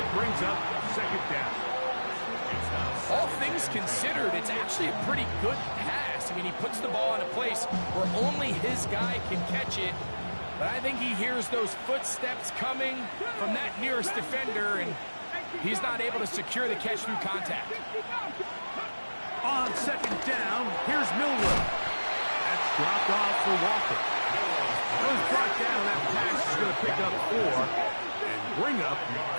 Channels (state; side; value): inverted; both; correlation -1.00